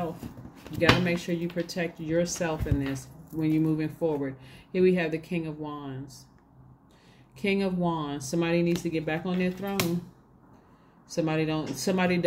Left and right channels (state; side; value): identical; both; correlation 1.00